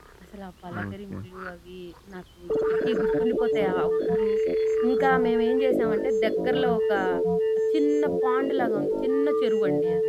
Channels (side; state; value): both; identical; correlation 1.00